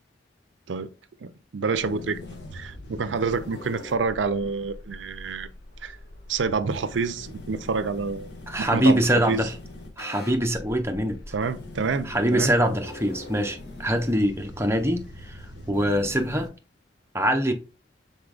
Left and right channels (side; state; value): both; normal; correlation 0.51